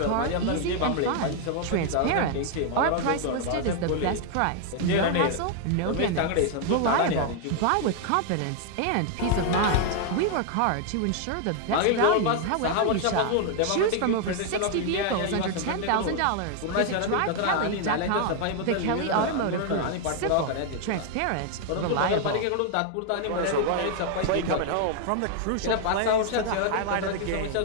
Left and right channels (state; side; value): different; both; correlation 0.00